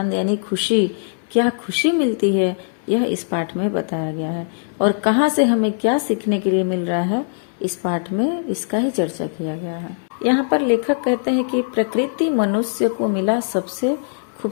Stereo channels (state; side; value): silent; right; digital silence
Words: यानी खुशी, क्या खुशी मिलती है, यह इस पाठ में बताया गया है। और कहाँ से हमें क्या सीखने के लिए मिल रहा है, इस पाठ में इसका ही चर्चा किया गया है। यहाँ पर लेखक कहते हैं कि प्रकृति मनुष्य को मिला सबसे